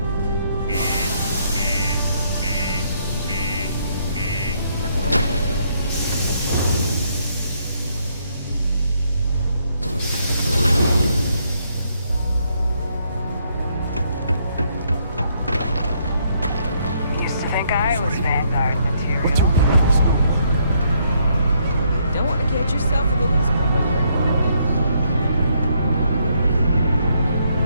Used to think I was Vanguard material. Don't want to catch yourself with a loose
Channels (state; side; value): inverted; both; correlation -0.72